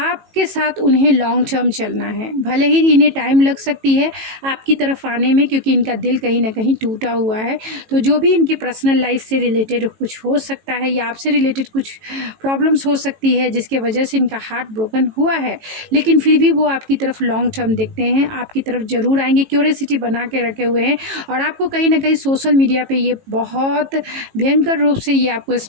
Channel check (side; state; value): left; late; 18 ms